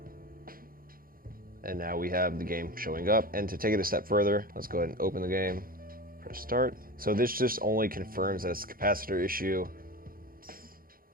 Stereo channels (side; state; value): left; late; 0.42 ms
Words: And now we have the game showing up. And to take it a step further, let's go ahead and open the game, press start. So this just only confirms that it's a capacitor issue.